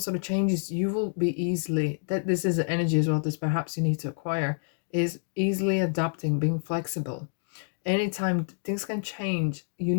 of changes, you will be easily, that this is the energy as well, this perhaps you need to acquire, is easily adapting, being flexible. Anytime things can change, you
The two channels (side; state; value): right; silent; digital silence